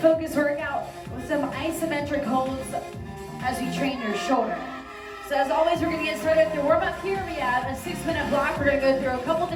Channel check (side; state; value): both; identical; correlation 1.00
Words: workout with some isometric holds as we train your shoulder. So as always, we're gonna get started with your warm up here. We have a 6-minute block. We're gonna go through a couple